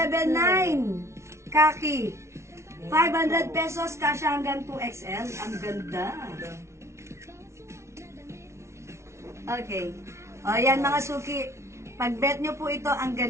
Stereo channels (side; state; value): left; late; 0.13 ms